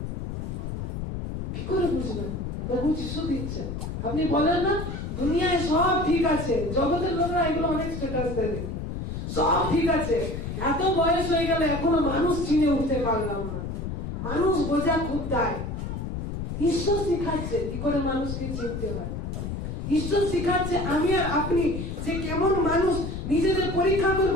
কি করে বুঝবেন? প্রভু যিশু দিচ্ছে। আপনি বলেন না দুনিয়ায় সব ঠিক আছে, জগতের লোকরা এগুলো অনেক স্ট্যাটাস দেয়, সব ঠিক আছে, এত বয়স হয়ে গেল এখনো মানুষ চিনে উঠতে পারলাম না, মানুষ বোঝা খুব দায়। ঈশ্বর শিখাচ্ছে কি করে মানুষকে চিনতে হয়। ঈশ্বর শিখাচ্ছে আমি আর আপনি যে কেমন মানুষ, নিজেদের পরীক্ষা করব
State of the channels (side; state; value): left; noise; rumble, 5 dB below the sound